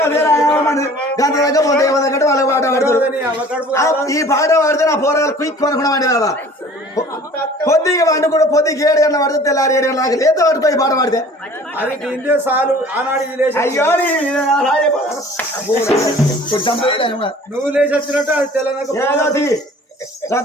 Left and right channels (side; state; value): both; normal; correlation 0.48